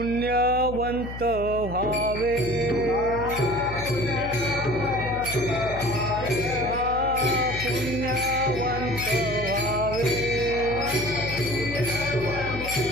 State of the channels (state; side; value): noise; left; hum, 9 dB below the sound